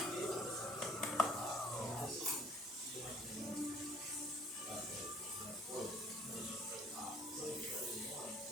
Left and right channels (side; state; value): both; normal; correlation 0.56